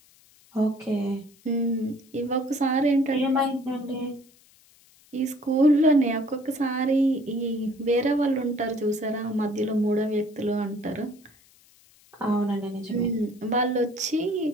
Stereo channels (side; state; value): left; noise; hiss, 29 dB below the sound